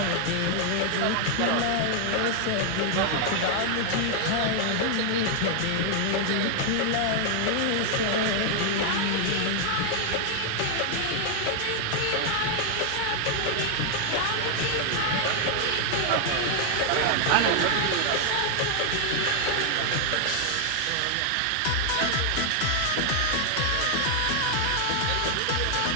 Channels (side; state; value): both; different; correlation 0.00